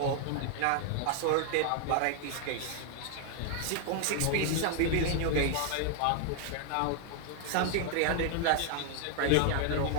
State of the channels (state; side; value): different; both; correlation 0.00